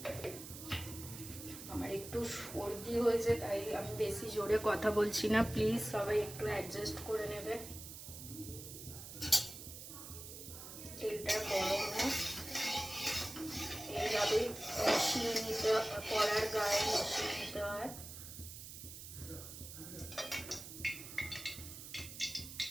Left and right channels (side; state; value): right; noise; hiss, 11 dB below the sound